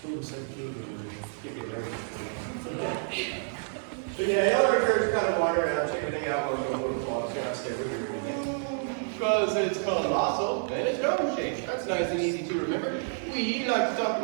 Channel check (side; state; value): left; silent; digital silence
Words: Ooh, so cute. So yeah, y'all are encouraged to kind of wander around, check everything out, while you go to the vlogs, kind of stay with your because it's colossal and it's dome shaped. That's nice and easy to remember. We like to talk